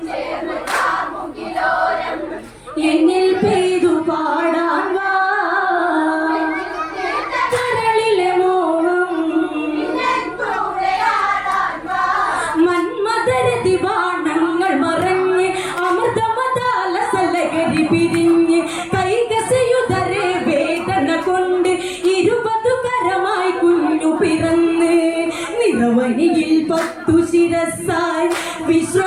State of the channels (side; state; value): both; identical; correlation 1.00